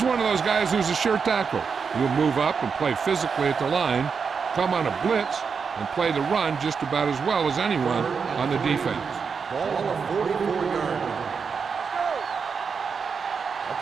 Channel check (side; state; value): left; quieter; 5.8 dB